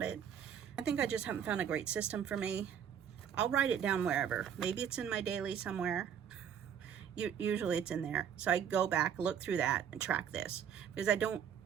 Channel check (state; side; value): quieter; left; 8.5 dB